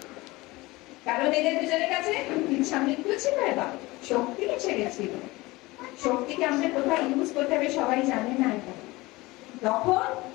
কারণ এদের দুজনের কাছে ইচ্ছা মৃত্যু ছিল, এবার শক্তি এসে গেছিল। শক্তিকে আমাদের কোথায় ইউজ করতে হবে সবাই জানে না এটা। তখন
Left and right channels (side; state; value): right; quieter; 21.2 dB